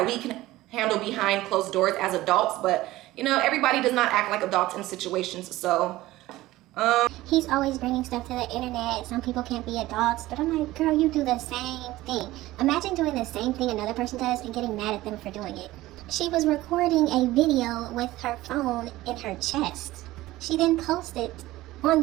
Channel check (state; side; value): quieter; left; 17.1 dB